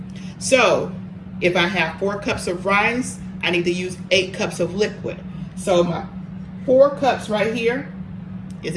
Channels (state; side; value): identical; both; correlation 1.00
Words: So if I have 4 cups of rice, I need to use 8 cups of liquid. So my 4 cups right here is